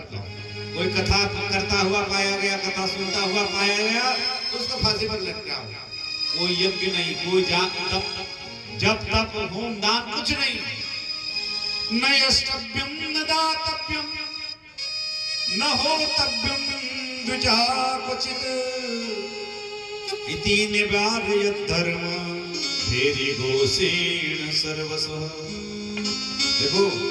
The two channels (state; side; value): identical; both; correlation 1.00